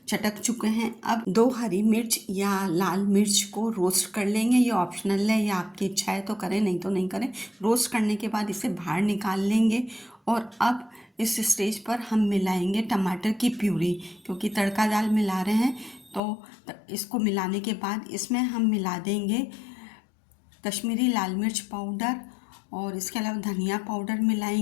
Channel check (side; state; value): right; drops out; at 16.2 s